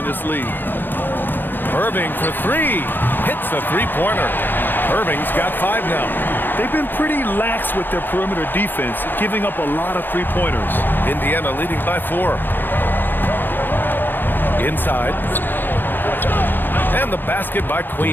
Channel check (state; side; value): late; right; 0.094 ms